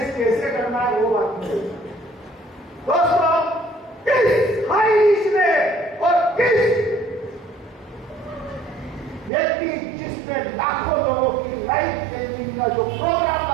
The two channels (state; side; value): drops out; left; at 9.3 s